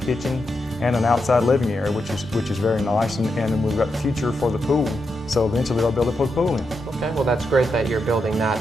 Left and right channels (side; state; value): both; normal; correlation 0.85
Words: kitchen and an outside living area, which is very nice. And we've got the future for the pool. So eventually they'll be able to put a pool in. Okay, well that's great that you're building